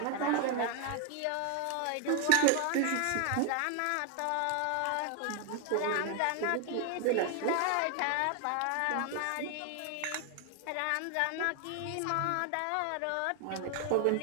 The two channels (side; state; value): both; different; correlation 0.00